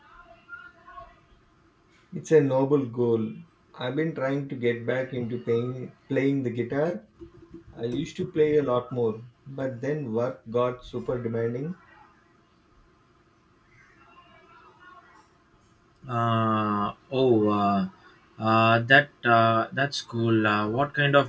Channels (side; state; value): both; identical; correlation 1.00